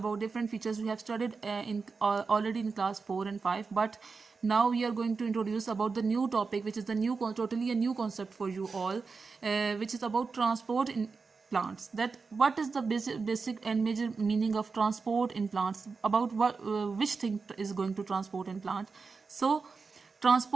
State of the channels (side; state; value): left; quieter; 4.7 dB